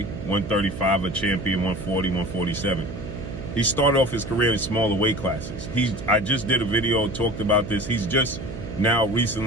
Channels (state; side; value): noise; right; hum, 10 dB below the sound